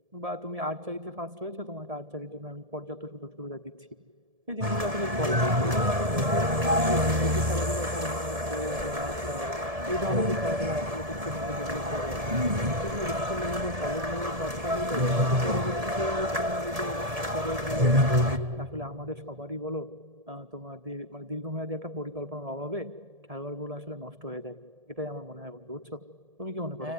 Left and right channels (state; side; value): late; left; 1.7 ms